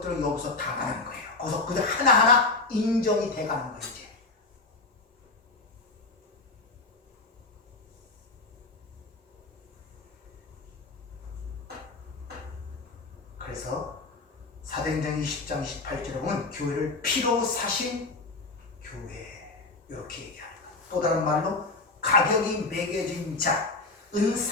여기서 당하는 거예요. 거기서 그들 하나하나 인정이 돼가는 거예요. 이제 그래서 사도행전 20장 28절에 보면 교회를 피로 사신 교회 이렇게 얘기하는 거예요. 또 다른 말로 가격이 매겨진 자 은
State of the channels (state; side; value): quieter; right; 3.6 dB